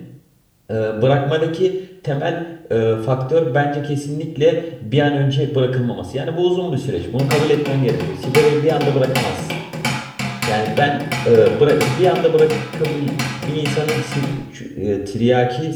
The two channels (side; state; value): both; identical; correlation 1.00